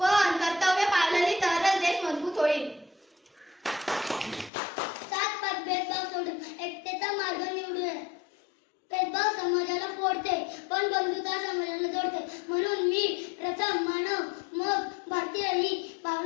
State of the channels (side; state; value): right; drops out; at 4.5 s